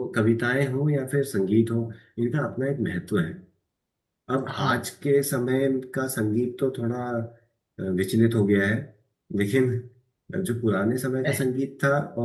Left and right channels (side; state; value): both; identical; correlation 1.00